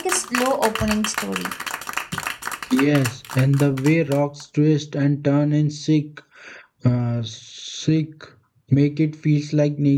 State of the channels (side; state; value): both; identical; correlation 1.00